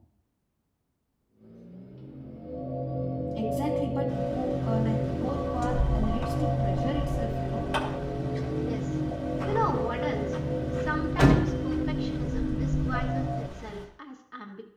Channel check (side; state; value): both; identical; correlation 1.00